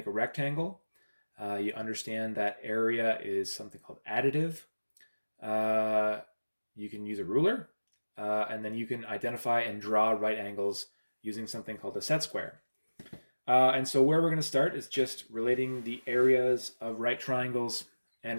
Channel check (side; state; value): both; inverted; correlation -1.00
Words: a rectangle. You understand that area is something called additive. You can use a ruler, and then you can identify and draw right angles using something called a set square. And so where we're going to start is just relating the areas of right triangles